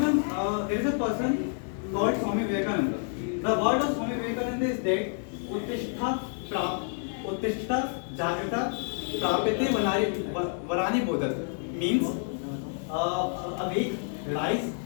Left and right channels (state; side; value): silent; right; 59 dB below the other